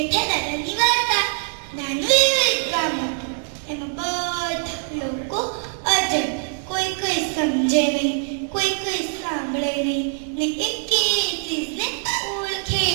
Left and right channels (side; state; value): left; silent; 63 dB below the other